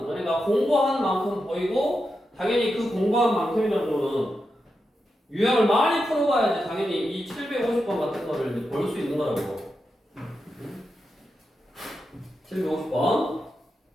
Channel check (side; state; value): both; normal; correlation 0.88